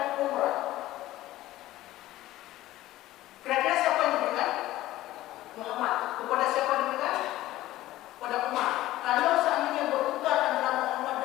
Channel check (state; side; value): quieter; right; 15.7 dB